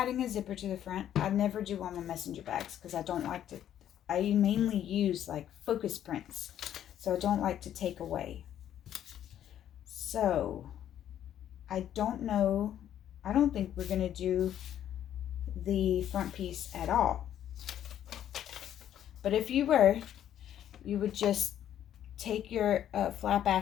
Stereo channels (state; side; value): quieter; right; 10.8 dB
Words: a zipper to the front. I never do on my messenger bags because I don't like to, I mainly use like focus prints, so I don't like to take away. So I don't know, I don't think we're going to do the front piece at all. But if you were, you would just take your flap